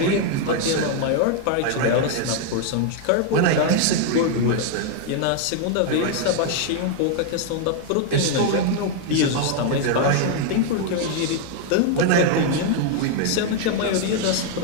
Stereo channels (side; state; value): both; different; correlation 0.00